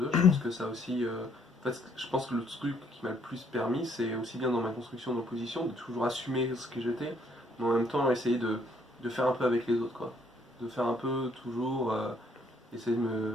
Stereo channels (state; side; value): normal; both; correlation 0.67